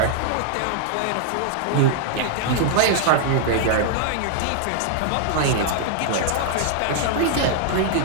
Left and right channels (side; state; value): both; different; correlation -0.01